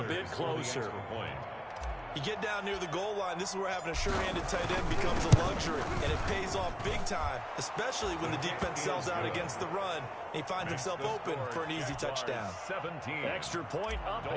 a bit closer. You get down near the goal line, this is where having a sure-handed tight end becomes a luxury, and it pays off big time, especially when the defense sells out against the run, and he finds himself open for an easy touchdown. 17. Extra point up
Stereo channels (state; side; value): identical; both; correlation 1.00